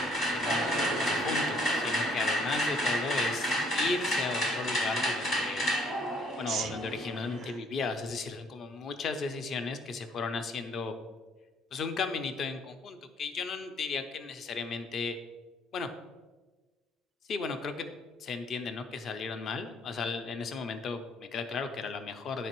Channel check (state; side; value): normal; both; correlation 0.63